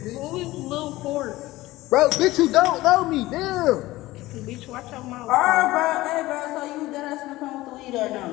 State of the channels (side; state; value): right; quieter; 18.0 dB